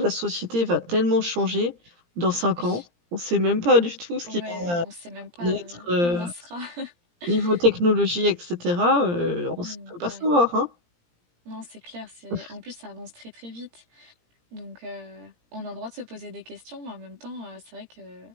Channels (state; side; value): late; left; 17 ms